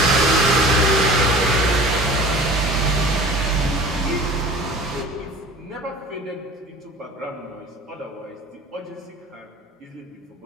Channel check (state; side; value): normal; both; correlation 0.41